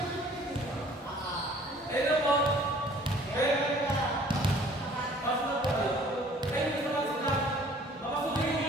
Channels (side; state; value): both; normal; correlation 0.54